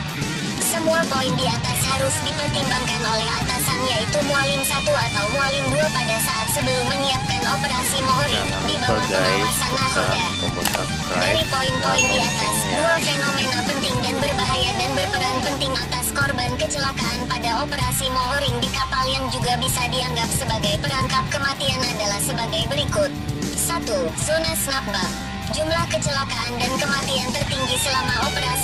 Semua poin di atas harus dipertimbangkan oleh atasan, yaitu mualim 1 atau mualim 2 pada saat sebelum menyiapkan operasi mooring di bawah pengawasan nahoda. Dari poin-poin di atas, 2 fenomena penting dan berbahaya dan berperan penting atas korban kecelakaan pada operasi mooring di kapal yang juga bisa dianggap sebagai perangkap kematian adalah sebagai berikut. 1. Zona snapback. Jumlah kecelakaan dan kematian tertinggi selama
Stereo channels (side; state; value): both; identical; correlation 1.00